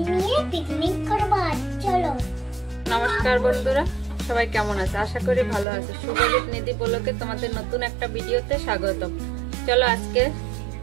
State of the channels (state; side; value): drops out; left; at 5.7 s